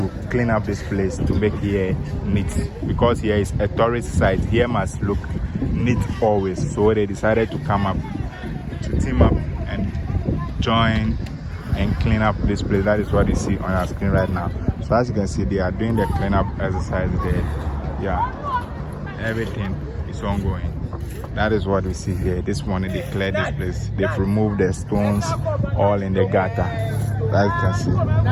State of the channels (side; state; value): both; identical; correlation 1.00